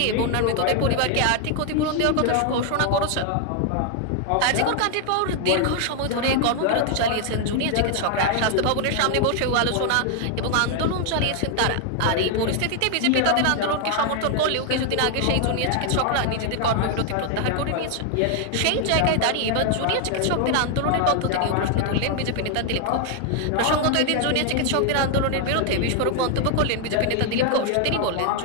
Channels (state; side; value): different; both; correlation 0.00